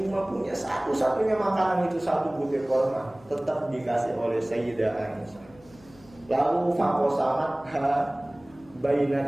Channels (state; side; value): noise; left; hum, 25 dB below the sound